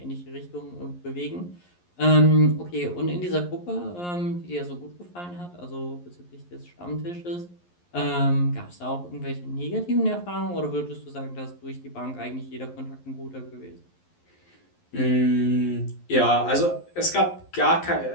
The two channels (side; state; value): right; late; 11 ms